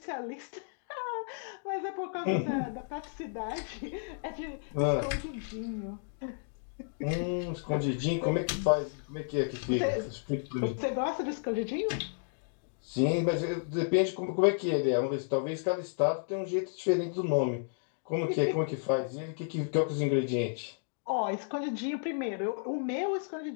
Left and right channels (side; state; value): right; silent; digital silence